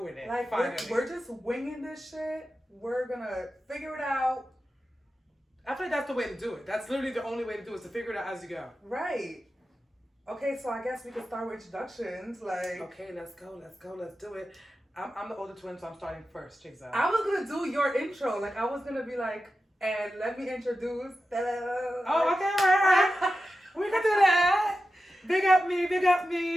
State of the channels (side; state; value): both; normal; correlation 0.92